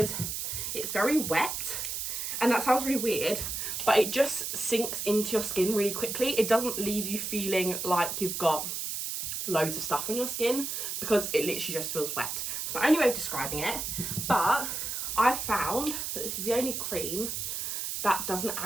it's very wet, and that sounds really weird, but it just sinks into your skin really quickly. It doesn't leave you feeling like you've got loads of stuff on your skin, because it literally just feels wet. It's my only way of describing it, but I found that this is the only cream that doesn't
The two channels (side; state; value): right; noise; hiss, 3 dB below the sound